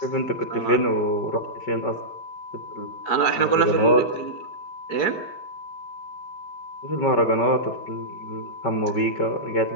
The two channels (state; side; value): late; right; 4.6 ms